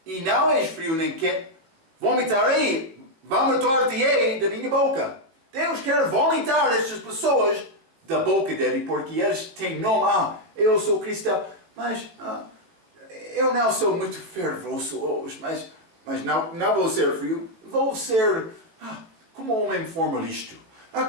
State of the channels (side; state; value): left; late; 19 ms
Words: e não és frio nem quente, vomitar-te-ei da minha boca. Deus quer vomitar estas pessoas da boca dele, porque eles têm nome. Eu sou cristão, mas eu não sou muito fervoroso hoje, mas Mas não vou ser frio, vou ser como homem formalista,